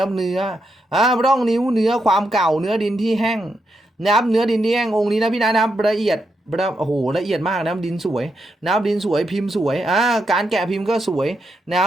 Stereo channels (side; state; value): both; normal; correlation 0.83